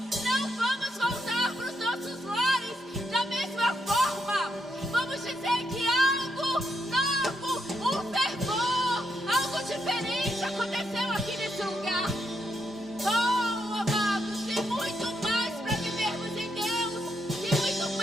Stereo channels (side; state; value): both; normal; correlation 0.80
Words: Não vamos voltar para os nossos lares da mesma forma. Vamos dizer que algo novo, um fervor, algo diferente aconteceu aqui nesse lugar. Oh, amados, tem muito mais para vivermos em Deus. Tem muito